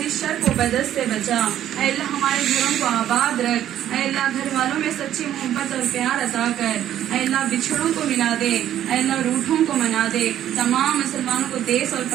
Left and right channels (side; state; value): left; quieter; 11.4 dB